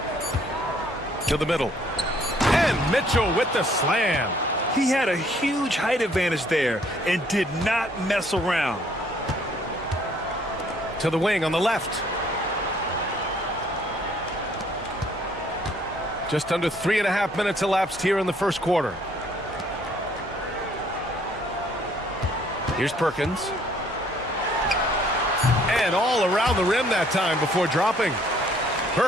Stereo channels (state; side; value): normal; both; correlation 0.62